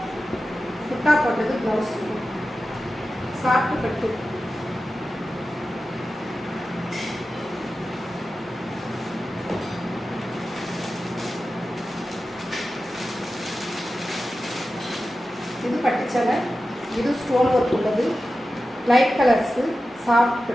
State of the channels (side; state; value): both; normal; correlation 0.93